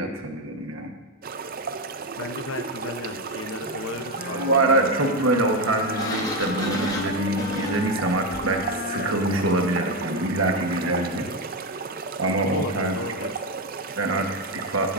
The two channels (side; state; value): both; normal; correlation 0.10